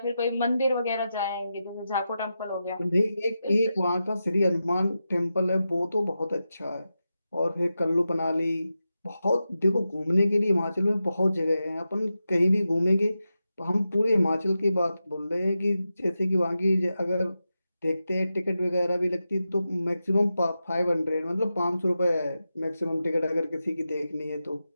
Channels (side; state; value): both; inverted; correlation -0.90